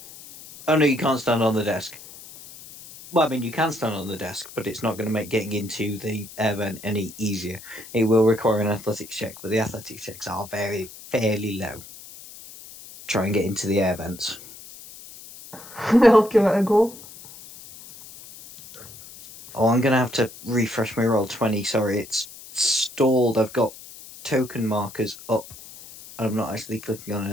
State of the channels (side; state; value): left; noise; hiss, 17 dB below the sound